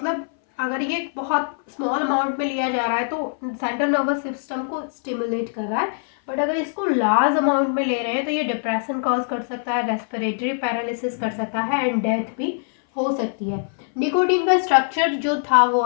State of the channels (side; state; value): right; silent; 59 dB below the other